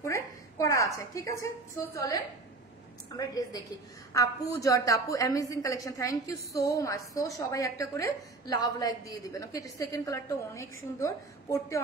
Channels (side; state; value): left; quieter; 3.3 dB